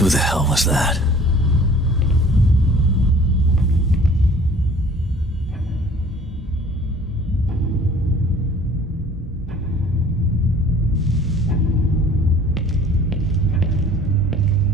Who the hell was that?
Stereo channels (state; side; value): normal; both; correlation 0.50